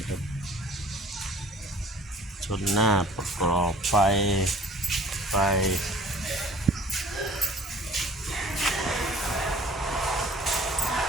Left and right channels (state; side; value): normal; both; correlation 0.49